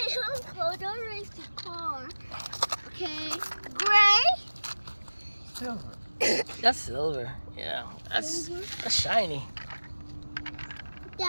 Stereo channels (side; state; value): both; inverted; correlation -1.00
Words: Uncle, don't race the car. Okay. Gray. Silver. That's silver. Yeah. That's shiny.